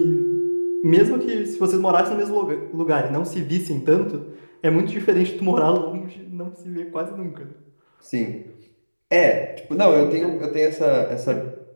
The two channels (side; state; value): both; inverted; correlation -1.00